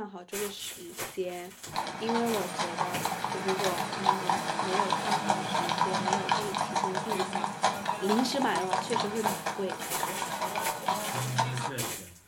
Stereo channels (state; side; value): identical; both; correlation 1.00